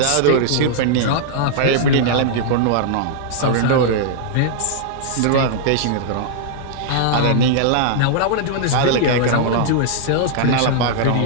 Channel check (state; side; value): different; both; correlation -0.01